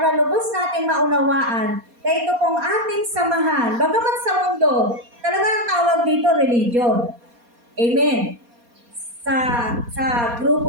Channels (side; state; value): left; late; 4.2 ms